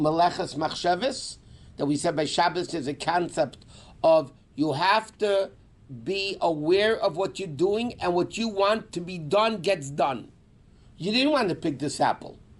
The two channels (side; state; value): both; identical; correlation 1.00